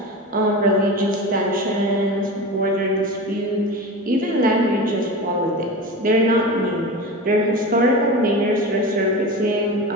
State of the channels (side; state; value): both; normal; correlation 0.28